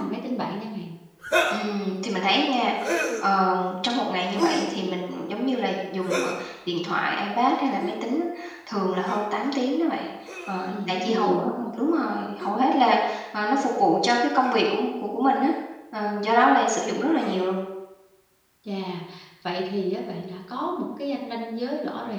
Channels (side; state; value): both; identical; correlation 1.00